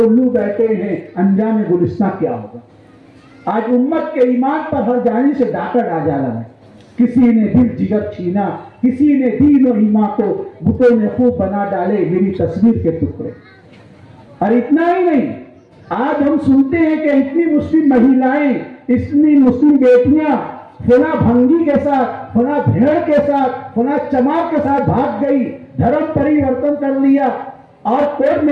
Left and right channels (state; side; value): identical; both; correlation 1.00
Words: بیٹھے ہیں, انجام گلستان کیا ہوگا؟ آج امت کے ایمان پر ہر جانب سے ڈاکہ ڈالا ہے. کسی نے دل جگر چھینا, کسی نے دین و ایمان کو بتوں نے خوب بنا ڈالے میری تصویر کے ٹکڑے. اور اتنا ہی نہیں, آج ہم سنتے ہیں کہ اتنی مسلم مہیلائیں, اتنی مسلم بیٹیاں فلاں بھنگی کے ساتھ, فلاں بھیڑ کے ساتھ, فلاں چمار کے ساتھ بھاگ گئی, دھرم پریورتن کر لیا اور کورٹ